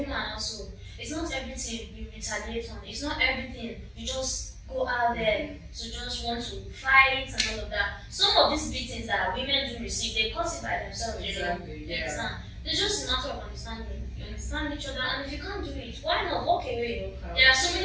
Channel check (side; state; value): both; identical; correlation 1.00